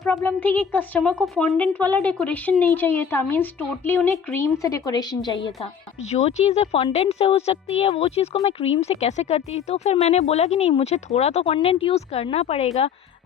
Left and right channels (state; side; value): quieter; right; 7.4 dB